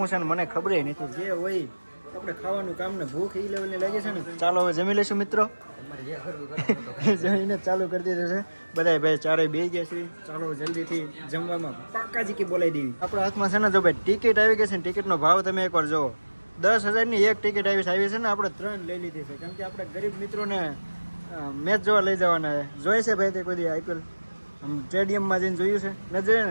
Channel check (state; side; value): inverted; both; correlation -1.00